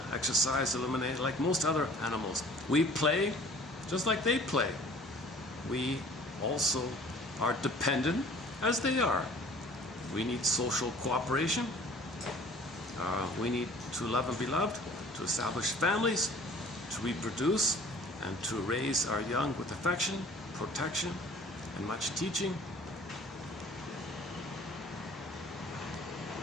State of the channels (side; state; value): both; normal; correlation 0.49